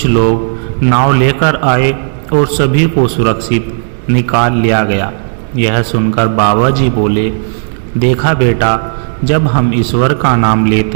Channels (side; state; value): left; silent; digital silence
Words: लोग नाव लेकर आए और सभी को सुरक्षित निकाल लिया गया। यह सुनकर बाबा जी बोले, देखा बेटा, जब हम ईश्वर का नाम